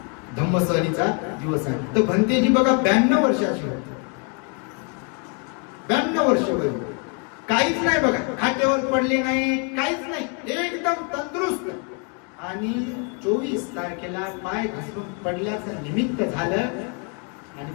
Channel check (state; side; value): quieter; right; 36.1 dB